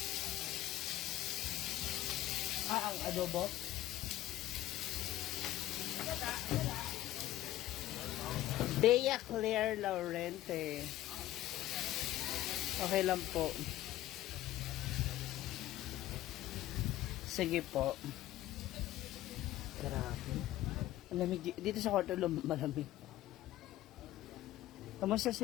Ang adobo? Bea Claire Laurente. Okay lang po. Sige po. Grabe. Malamig dito sa kwarto, malamig. Kamusta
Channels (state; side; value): quieter; right; 14.8 dB